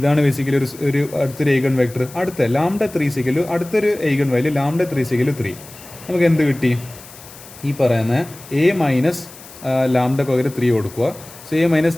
ബേസിക്കലി ഒരു അടുത്തൊരു ഈഗൺ വെക്ടർ. അടുത്ത λ3 is equal to അടുത്തൊരു eigen value λ3 is equal to 3. നമുക്ക് എന്ത് കിട്ടി? ഈ പറയുന്ന A മൈനസ് ലാംഡക്ക് പകരം 3 കൊടുക്കുക. So A minus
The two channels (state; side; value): noise; left; hiss, 19 dB below the sound